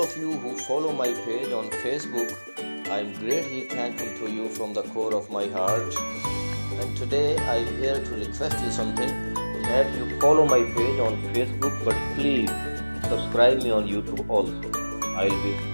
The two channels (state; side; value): inverted; both; correlation -1.00